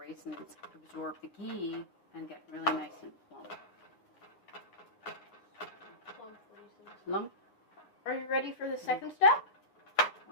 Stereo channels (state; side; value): late; right; 10 ms